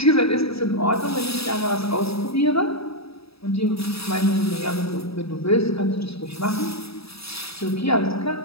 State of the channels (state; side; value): late; right; 0.77 ms